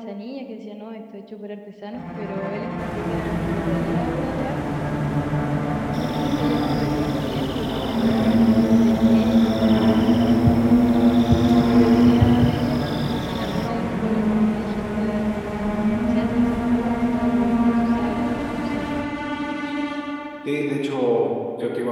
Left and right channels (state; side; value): identical; both; correlation 1.00